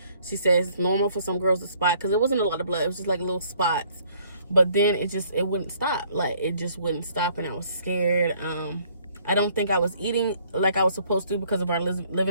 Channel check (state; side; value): inverted; both; correlation -0.62